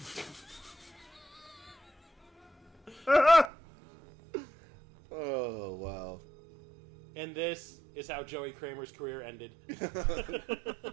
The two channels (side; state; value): left; drops out; at 3.5 s